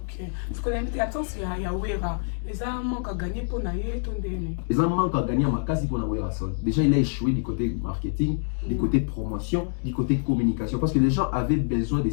Ce qu'on a mis attention, il y a Ouera. Ils ont manque à gagner pour naïe, ton déné. Ils ont manque à gagner à ma case pour na Ouera son. Déjà, il a échoué du côté marketing, du côté promotion, du côté communication. Parce que les gens avaient besoin de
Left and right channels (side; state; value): right; silent; digital silence